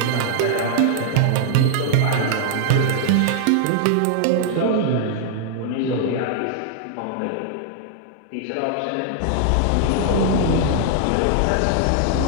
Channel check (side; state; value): both; different; correlation -0.01